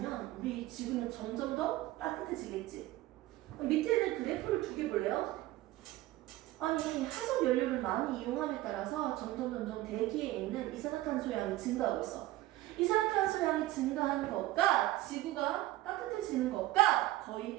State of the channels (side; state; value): left; quieter; 16.6 dB